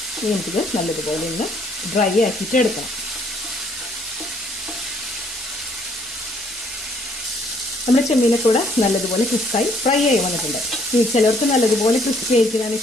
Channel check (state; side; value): normal; both; correlation 0.65